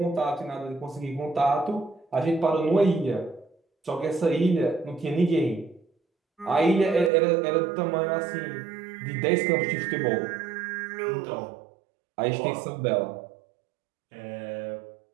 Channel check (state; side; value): drops out; left; at 7.1 s